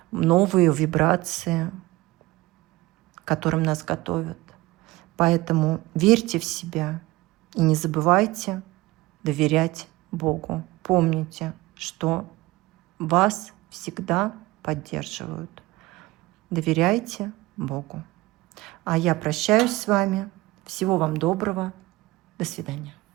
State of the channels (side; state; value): left; quieter; 19.7 dB